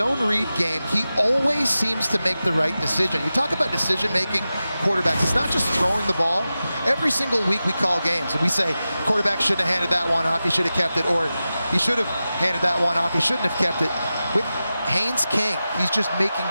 read game, he always seems to make the right decision. You talk about decision-making quarterbacks. It's not just throwing the ball. Every single week we call games, and we say, quarterback shouldn't have handed that one off, he should have kept it, or he should have handed that one off, he shouldn't have kept it. With Haynes King, he's just making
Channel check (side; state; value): both; inverted; correlation -0.94